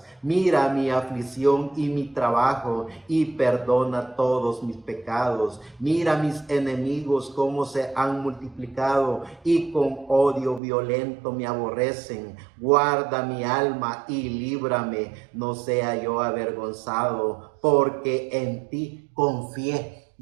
Mira mi aflicción y mi trabajo, y perdona todos mis pecados. Mira mis enemigos cómo se han multiplicado, y con odio violento me aborrecen. Guarda mi alma y líbrame, no sea yo avergonzado, porque en ti confié.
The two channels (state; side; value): drops out; left; at 10.6 s